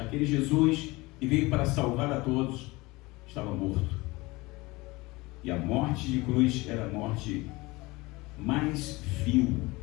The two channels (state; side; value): quieter; right; 22.4 dB